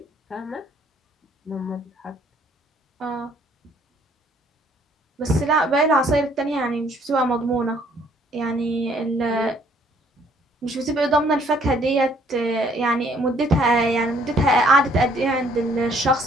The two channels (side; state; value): both; normal; correlation 0.62